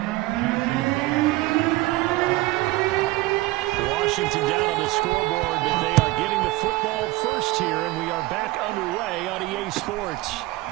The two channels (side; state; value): left; quieter; 19.3 dB